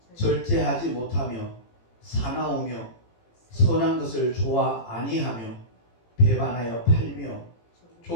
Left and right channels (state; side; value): late; right; 18 ms